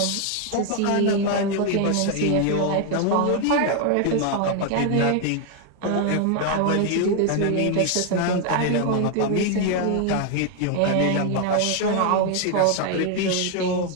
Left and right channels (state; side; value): different; both; correlation 0.01